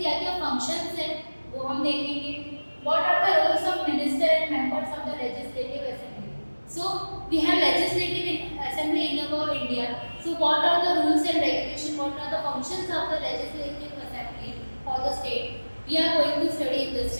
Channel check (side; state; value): both; inverted; correlation -1.00